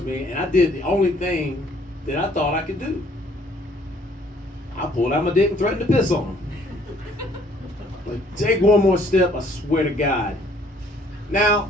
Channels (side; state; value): both; normal; correlation 0.61